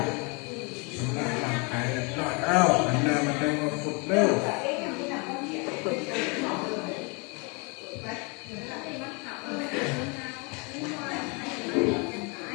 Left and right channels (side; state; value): right; quieter; 31.7 dB